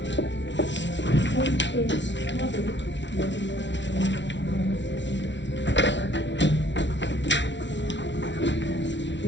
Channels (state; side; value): late; right; 0.52 ms